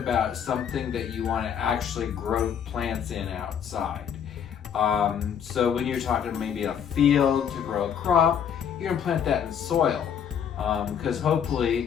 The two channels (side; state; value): right; quieter; 8.2 dB